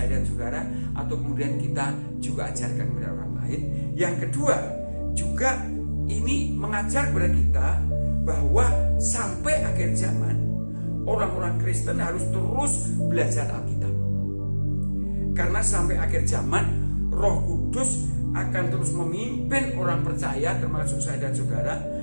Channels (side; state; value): both; inverted; correlation -1.00